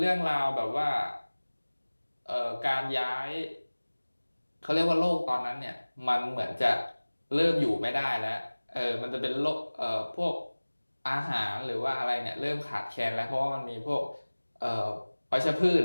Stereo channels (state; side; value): inverted; both; correlation -1.00